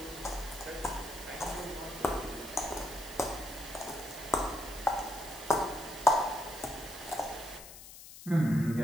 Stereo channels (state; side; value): noise; left; hiss, 15 dB below the sound